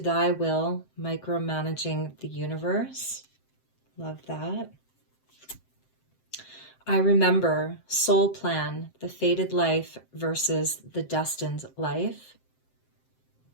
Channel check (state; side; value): late; right; 7.7 ms